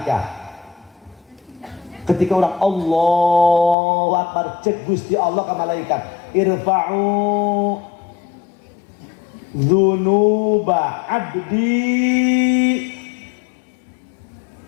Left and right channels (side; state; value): right; drops out; at 3.8 s